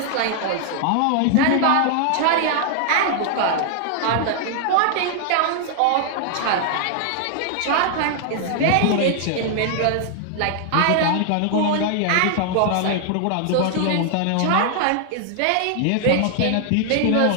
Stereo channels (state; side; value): different; both; correlation 0.00